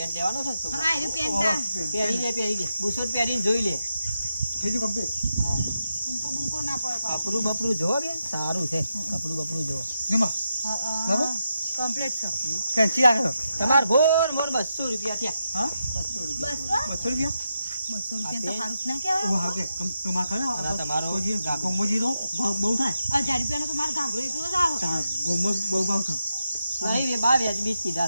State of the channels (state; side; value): inverted; both; correlation -0.86